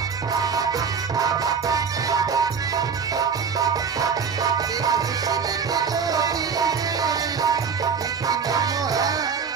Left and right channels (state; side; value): quieter; left; 6.2 dB